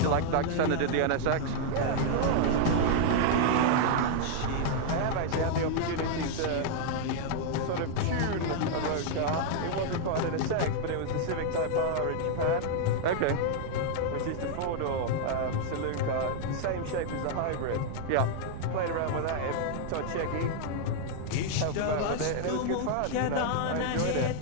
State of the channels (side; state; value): both; different; correlation -0.01